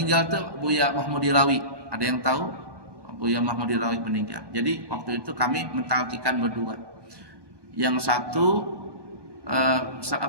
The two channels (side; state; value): left; late; 1.2 ms